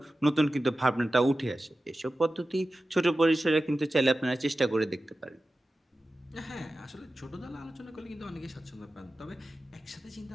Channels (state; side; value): normal; both; correlation 0.94